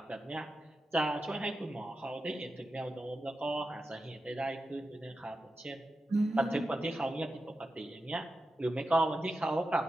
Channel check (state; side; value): normal; both; correlation 0.91